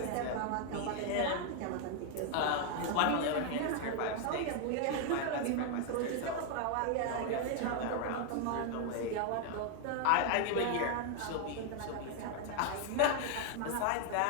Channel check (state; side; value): different; both; correlation 0.00